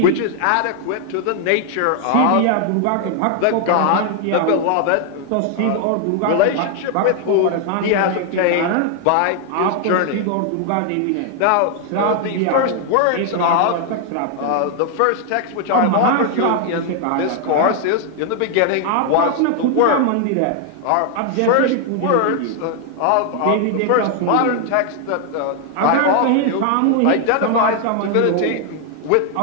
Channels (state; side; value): different; both; correlation 0.00